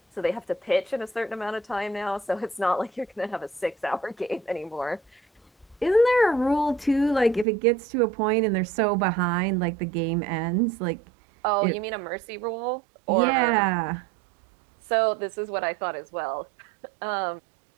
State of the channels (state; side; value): drops out; left; at 7.5 s